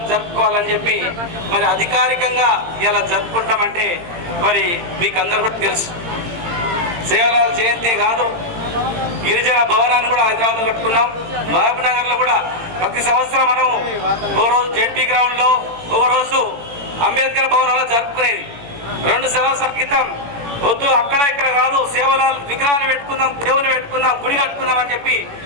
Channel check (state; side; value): late; left; 18 ms